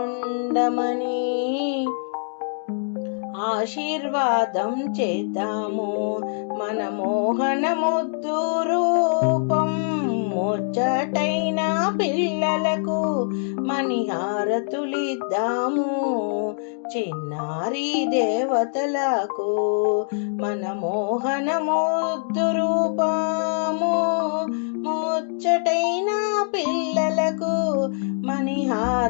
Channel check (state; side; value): silent; right; digital silence